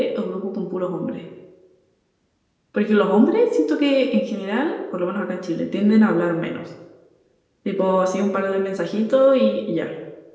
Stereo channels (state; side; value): identical; both; correlation 1.00